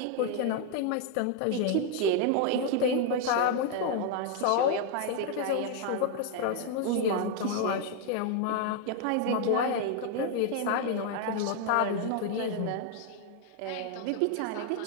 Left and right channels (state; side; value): different; both; correlation 0.00